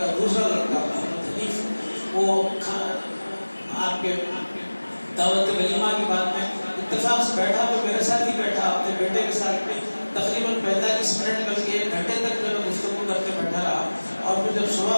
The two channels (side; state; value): both; inverted; correlation -1.00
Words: دوسرا لڑکا محمد حنیف وہ آپ کے دعوت ولیمہ کی بات میں اتفاق سے بیٹھا تو میرے ساتھ ہی بیٹھا, اپنے بیٹے کے ساتھ میں تقریباً 45 منٹ بلکہ 1 گھنٹے تک جو ہے گفتگو کرتے بیٹھا رہا. اور پھر جب